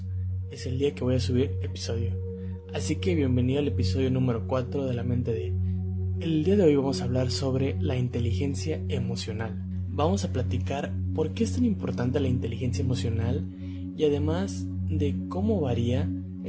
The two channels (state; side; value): identical; both; correlation 1.00